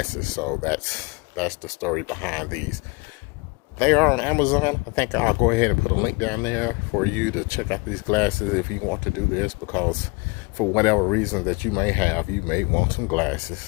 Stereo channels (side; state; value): right; quieter; 28.3 dB